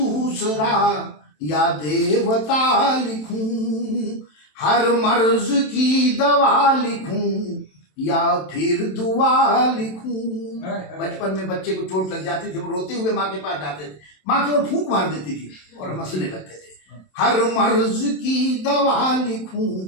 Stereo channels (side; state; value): right; late; 27 ms